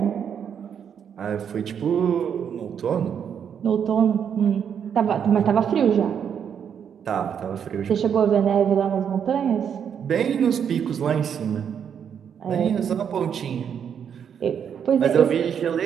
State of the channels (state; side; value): quieter; left; 8.0 dB